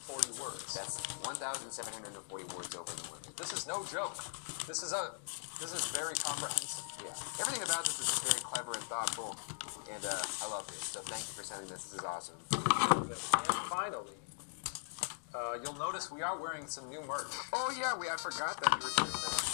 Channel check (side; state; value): right; silent; digital silence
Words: words. That's 1,740 words over the limit. This is no joke. This is very comprehensive. Yeah, everything about this is just very clever and thoughtful, and I love this. So thank you for sending this. This is awesome. And finally, you'll notice we are wearing some new merch. Oh yeah, I forgot that you were doing